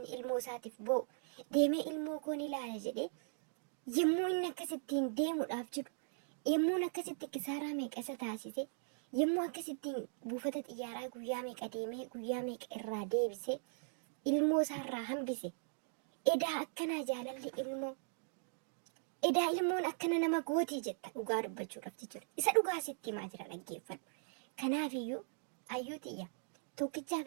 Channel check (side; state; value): left; silent; digital silence